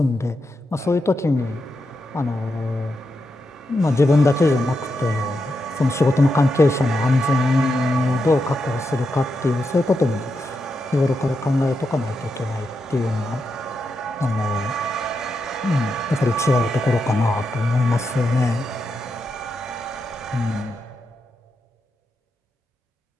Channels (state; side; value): normal; both; correlation 0.85